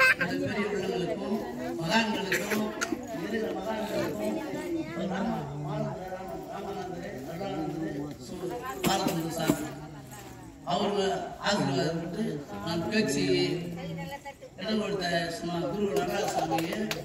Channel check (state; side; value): identical; both; correlation 1.00